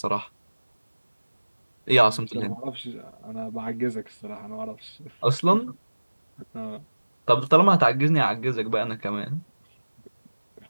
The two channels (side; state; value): both; inverted; correlation -1.00